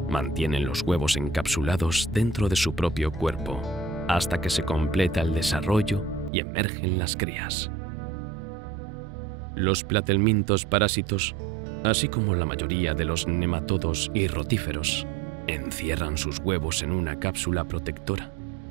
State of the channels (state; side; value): drops out; left; at 6.3 s